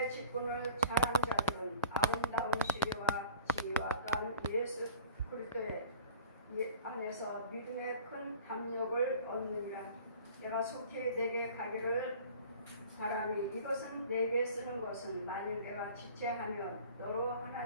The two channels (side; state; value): both; inverted; correlation -0.46